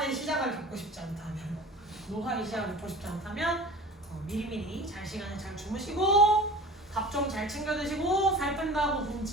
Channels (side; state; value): both; normal; correlation 0.39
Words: 시작을 겪고 싶지 않다면 미리미리 잘 시간에 잘 주무시고 밥 좀 잘 챙겨 드시고 살 뺀다고